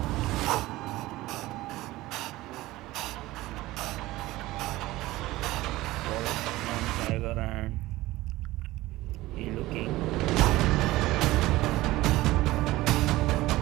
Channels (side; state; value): left; quieter; 17.9 dB